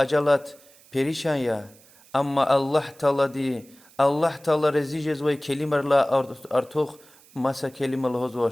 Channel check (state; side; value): noise; right; hiss, 26 dB below the sound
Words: پریشان يا اما الله تعالى دي الله تعالى رزيجز وي كلمه لا ارتوخ مسا كلمه